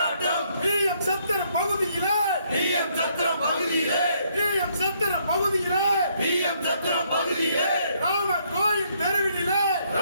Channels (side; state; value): both; inverted; correlation -0.70